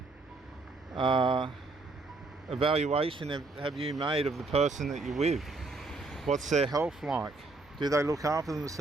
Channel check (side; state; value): left; quieter; 3.5 dB